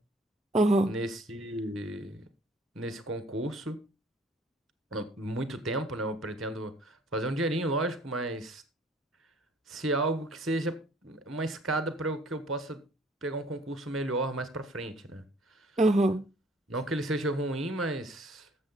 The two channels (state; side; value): normal; both; correlation 0.56